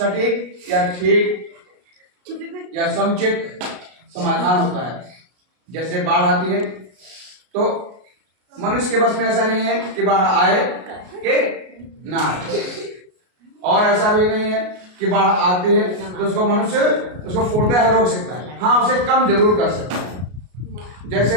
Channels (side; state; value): left; late; 33 ms